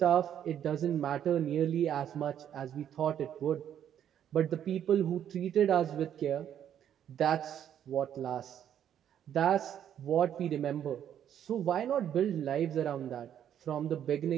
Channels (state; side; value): quieter; left; 9.9 dB